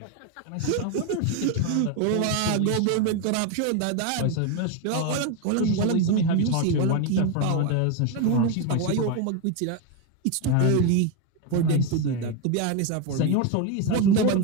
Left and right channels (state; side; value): different; both; correlation 0.02